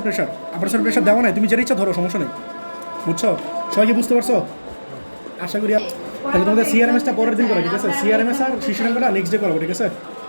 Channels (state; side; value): inverted; both; correlation -1.00